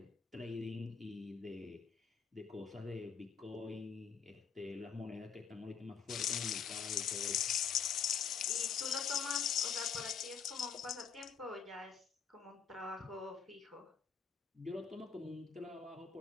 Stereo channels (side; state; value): right; quieter; 6.8 dB